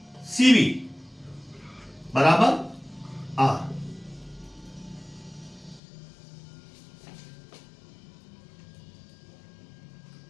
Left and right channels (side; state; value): right; drops out; at 5.8 s